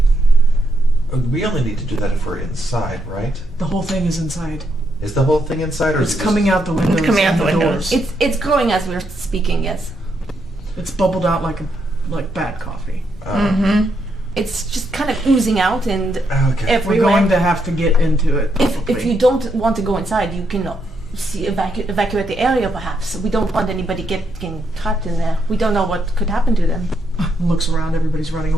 We only need to do that if we're inside, right? The whole thing is inside. Is the whole thing inside, or It's is it coming out the windows. coming out and the windows. doors. It's growing as we're speaking, yes. It's bubbled out like bad coffee. It's just kind of oozing out and Okay. We're everywhere. going to have to get into it. If probably. you don't want to go inside, you can evacuate the area perhaps. We don't want anybody getting trapped in there. We don't know what could happen to them. Looks around, everybody's running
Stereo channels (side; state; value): both; normal; correlation 0.78